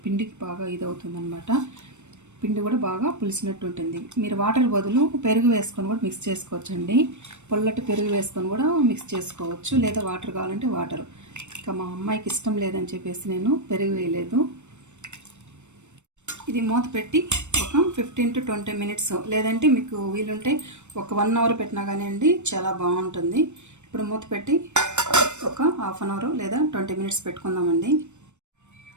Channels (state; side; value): late; left; 0.84 ms